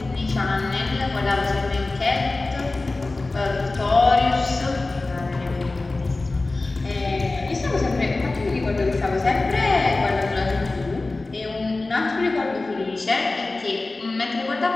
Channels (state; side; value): quieter; right; 3.3 dB